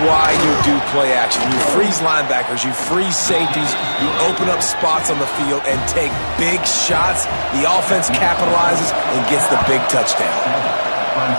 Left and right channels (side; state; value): both; inverted; correlation -1.00